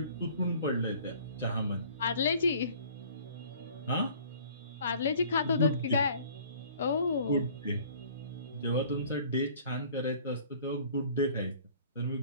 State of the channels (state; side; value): inverted; both; correlation -0.51